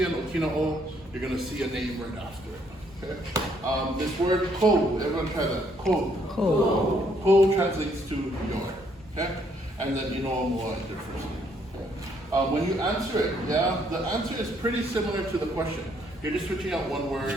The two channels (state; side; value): normal; both; correlation 0.69